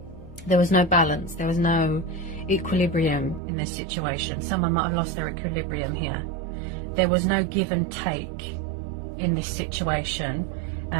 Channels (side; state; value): left; drops out; at 3.4 s